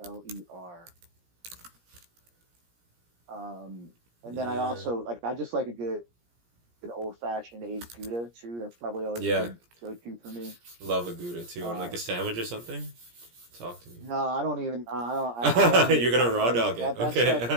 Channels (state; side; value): late; left; 17 ms